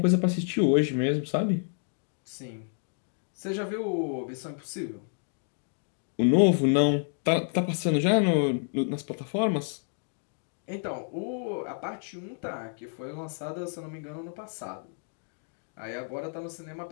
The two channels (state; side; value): silent; right; 55 dB below the other